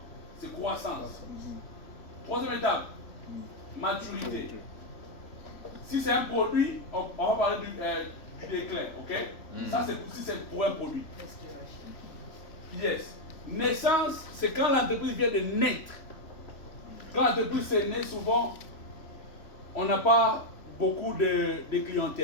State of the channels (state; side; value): late; right; 3.5 ms